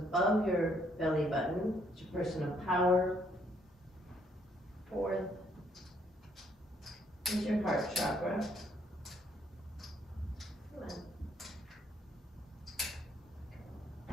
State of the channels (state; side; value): normal; both; correlation 0.69